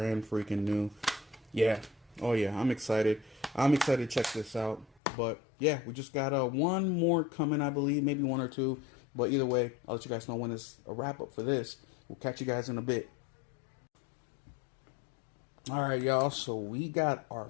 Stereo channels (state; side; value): drops out; right; at 5.0 s